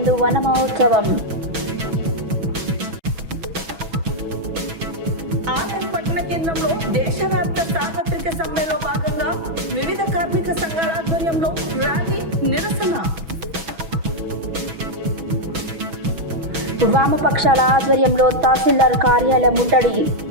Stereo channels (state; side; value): late; left; 6.1 ms